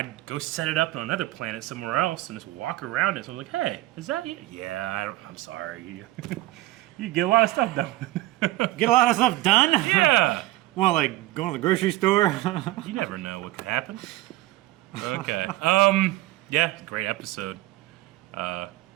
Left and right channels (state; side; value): quieter; left; 17.6 dB